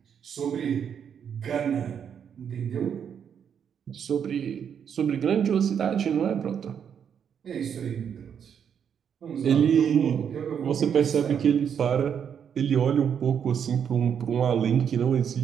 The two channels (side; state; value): left; quieter; 7.9 dB